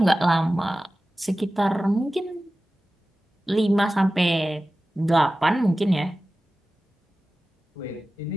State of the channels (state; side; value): normal; both; correlation 0.95